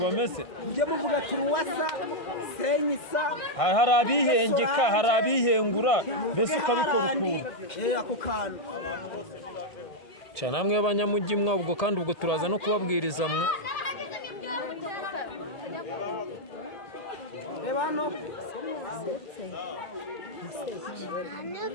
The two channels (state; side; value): late; right; 1.6 ms